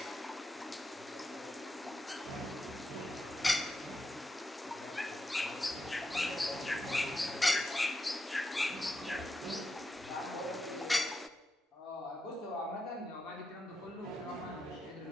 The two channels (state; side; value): normal; both; correlation 0.86